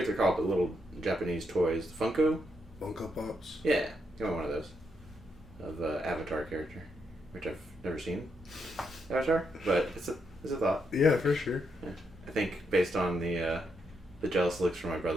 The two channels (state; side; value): normal; both; correlation 0.79